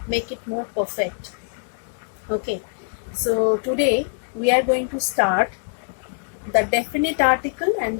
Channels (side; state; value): right; silent; 63 dB below the other